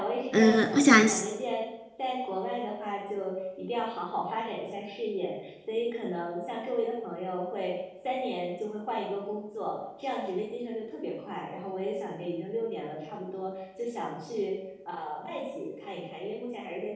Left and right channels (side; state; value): both; identical; correlation 1.00